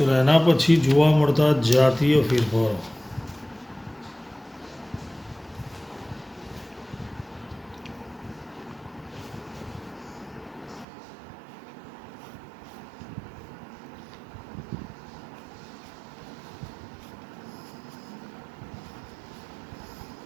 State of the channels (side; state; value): left; drops out; at 10.9 s